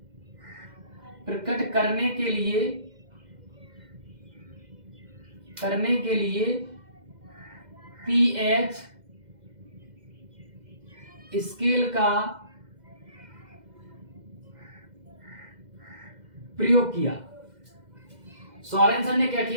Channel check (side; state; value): left; late; 2.0 ms